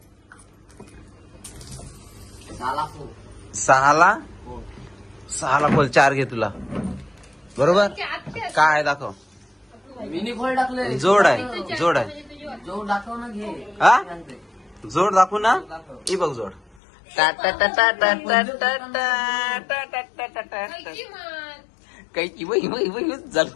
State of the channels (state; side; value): drops out; right; at 16.8 s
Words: झाला हो. सहाला खोल 4 घे तुला बरोबर काय आहे दाखव मिनी खोल टाकले जोड आहे जोड आहे जो दाखव ना घे हा जोड दाखवू ना ही बघ जोड टा टा टा टा टा टा टा टा टा टा टा टा काही की वही वही वही